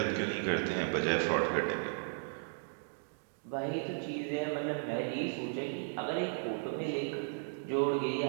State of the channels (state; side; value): silent; left; digital silence